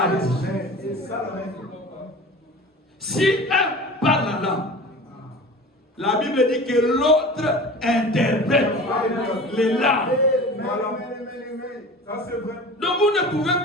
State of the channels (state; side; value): normal; both; correlation 0.38